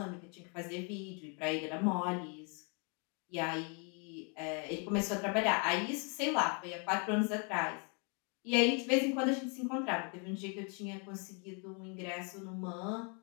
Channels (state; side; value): quieter; right; 37.2 dB